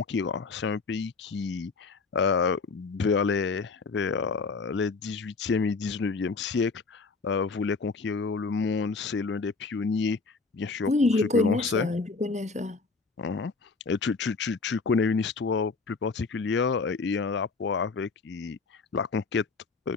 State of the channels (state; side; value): quieter; right; 4.3 dB